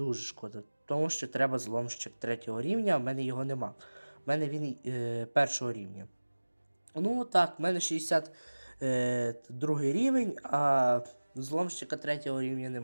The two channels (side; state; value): both; inverted; correlation -1.00